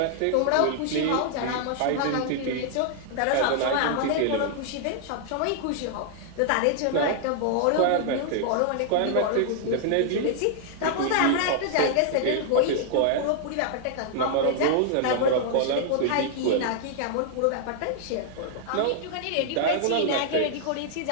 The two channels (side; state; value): both; different; correlation -0.01